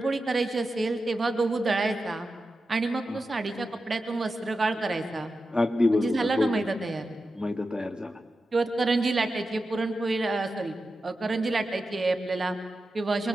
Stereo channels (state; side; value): normal; both; correlation 0.91